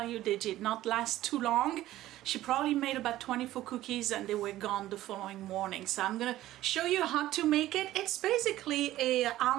you, they did not last too long. She probably made about 24 cookies and they were gone the following morning. So I'm gonna show you how to make it. It's basically a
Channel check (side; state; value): left; quieter; 14.8 dB